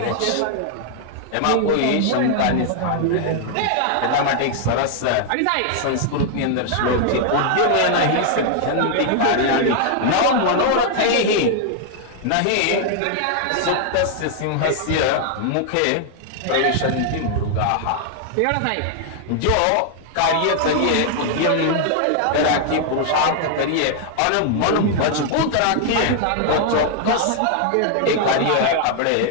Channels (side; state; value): both; different; correlation 0.00